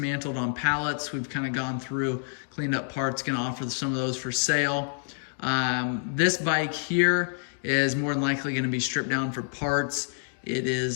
on pallets. We've kind of gone through, cleaned up parts, going to offer some of those for sale. This bike here is more than likely going to be stripped down for parts. It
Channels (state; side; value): silent; right; 60 dB below the other